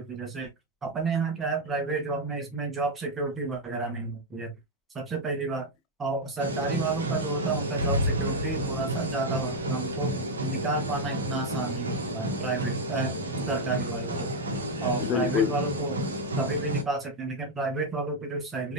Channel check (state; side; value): normal; both; correlation 0.03